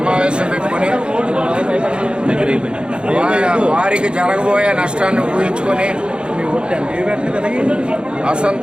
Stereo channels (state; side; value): late; left; 0.053 ms